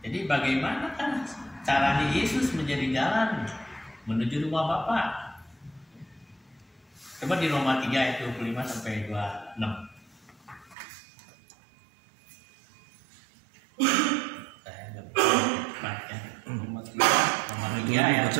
bagaimana kan caranya Yesus menjadi jalan menuju rumah Bapa? Coba di Roma 3 ayat 25 sampai 26. Saya enggak bisa ya. Roma 3 ayat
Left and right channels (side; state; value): left; drops out; at 10.8 s